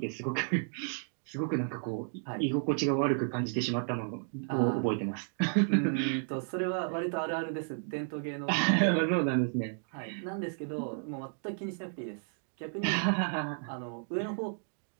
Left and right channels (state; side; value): silent; left; 56 dB below the other